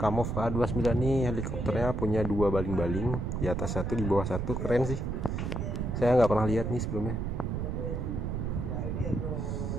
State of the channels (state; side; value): noise; right; rumble, 2 dB below the sound